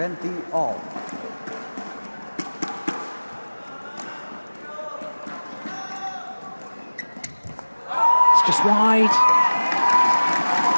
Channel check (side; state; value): both; inverted; correlation -1.00